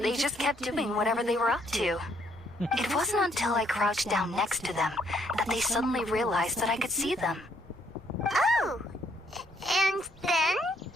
just kept doing whatever they were up to. It wasn't until I crouched down next to them that they suddenly realized that I could see them. Oh! And then?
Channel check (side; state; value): both; normal; correlation 0.69